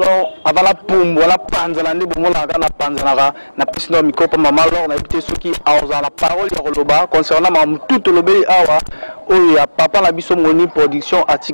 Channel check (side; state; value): both; inverted; correlation -1.00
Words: lo avant la pumbo la panzala ndi bomola kana panzala na pisno mikopa mama lo na ibite ceux qui aoza la parole ya loba concernant mam tout lobeli awa oya papa la biso moni production